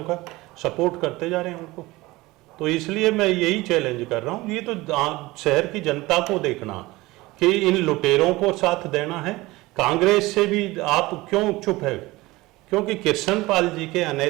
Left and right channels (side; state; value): left; quieter; 20.3 dB